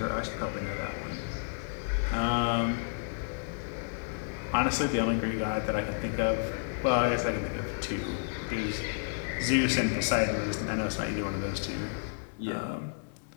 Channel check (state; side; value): silent; right; digital silence